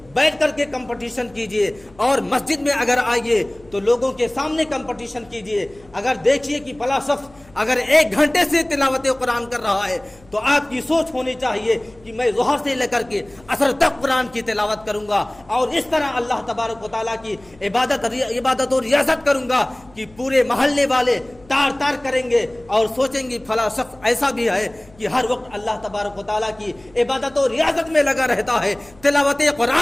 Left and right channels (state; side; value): noise; left; hum, 27 dB below the sound